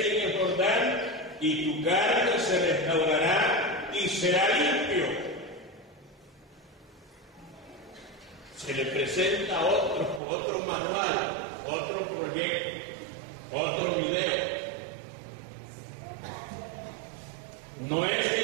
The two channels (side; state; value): left; drops out; at 10.2 s